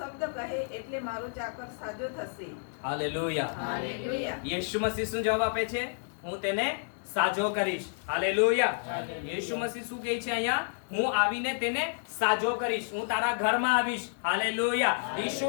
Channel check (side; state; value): right; silent; digital silence